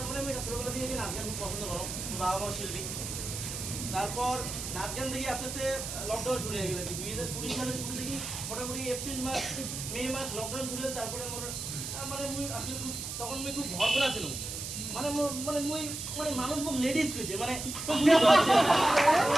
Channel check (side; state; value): right; noise; hiss, 6 dB below the sound